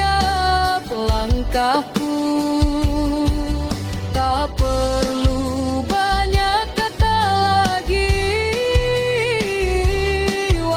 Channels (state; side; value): identical; both; correlation 1.00